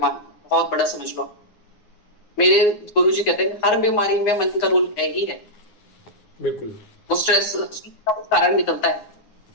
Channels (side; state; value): right; late; 9.7 ms